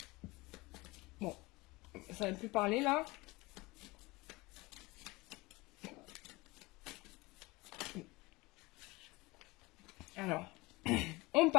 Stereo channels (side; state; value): right; quieter; 22.6 dB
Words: Bon, ça ne va plus parler là. Alors, on